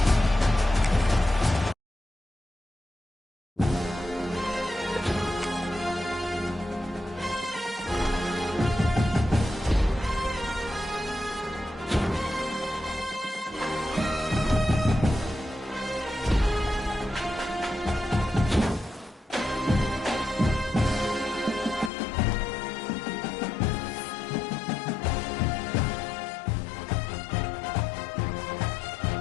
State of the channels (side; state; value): right; drops out; at 21.9 s